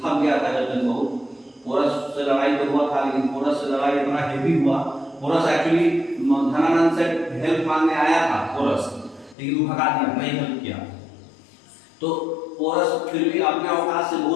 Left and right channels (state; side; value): drops out; right; at 9.3 s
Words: थक गया था जब तक बहुत। पोरस से लड़ाई तो हुआ था, लेकिन पोरस से लड़ाई इतना हेवी हुआ। पोरस एक्चुअली धनानंद से हेल्प मांगने आया था पोरस, लेकिन वो भगा दिया, नहीं हेल्प किया। तो पोरस फिर भी अपने औकात से